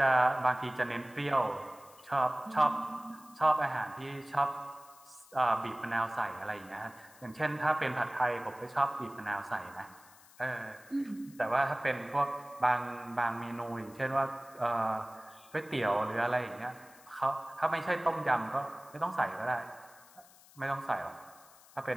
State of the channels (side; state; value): left; noise; hiss, 24 dB below the sound